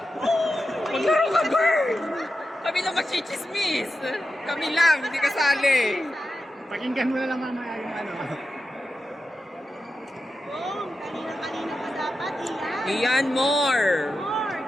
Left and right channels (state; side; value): normal; both; correlation 0.90